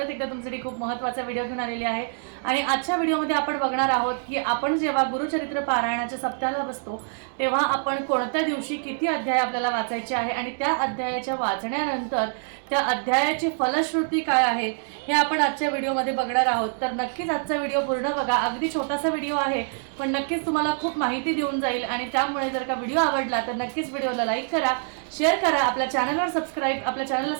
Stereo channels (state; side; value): silent; left; 61 dB below the other